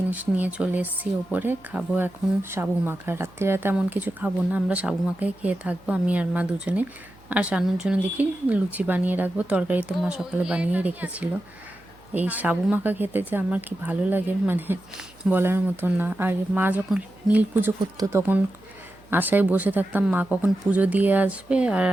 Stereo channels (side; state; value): right; noise; hum, 27 dB below the sound